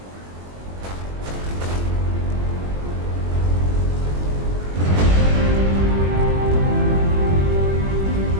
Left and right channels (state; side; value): late; left; 21 ms